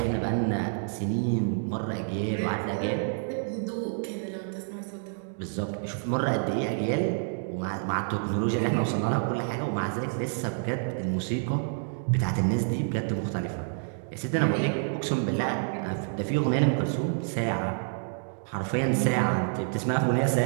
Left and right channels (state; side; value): silent; left; digital silence